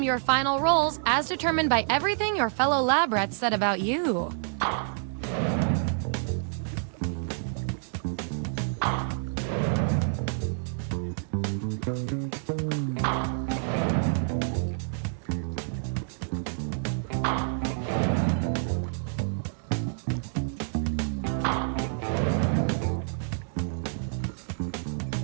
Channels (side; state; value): left; silent; digital silence